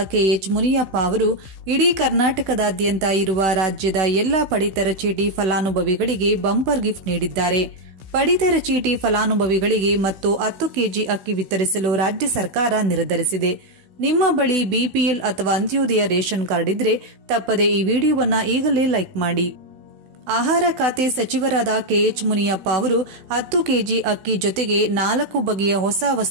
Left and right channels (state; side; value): late; left; 16 ms